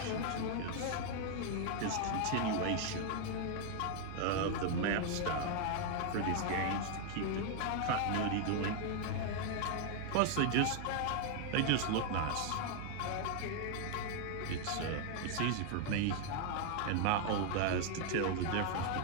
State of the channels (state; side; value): different; both; correlation 0.00